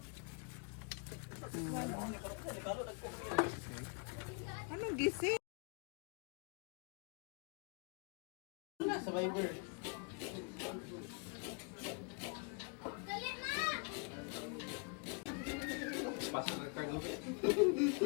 Anong gising? Survivor. Pasok ka cargo.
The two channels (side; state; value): right; quieter; 38.7 dB